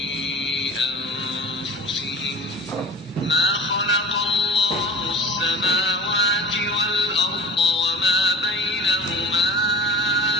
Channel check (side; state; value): both; normal; correlation 0.36